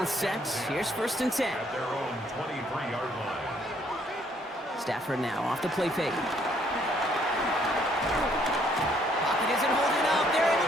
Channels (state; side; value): normal; both; correlation 0.66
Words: set. Here's 1st and 10. At their own 23-yard line. Stafford now off the play fake. Pocket isn't holding up. They're